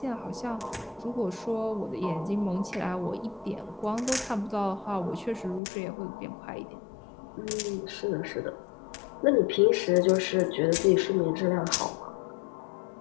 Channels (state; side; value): drops out; right; at 5.6 s